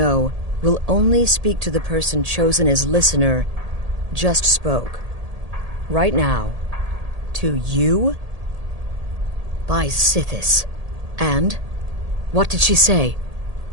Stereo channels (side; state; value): left; late; 1.8 ms